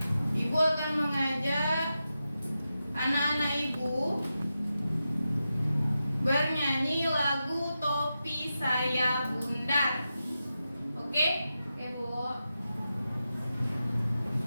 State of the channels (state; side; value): inverted; both; correlation -0.90